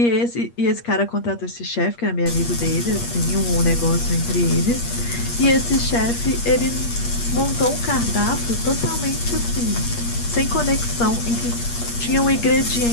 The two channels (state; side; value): late; right; 8.5 ms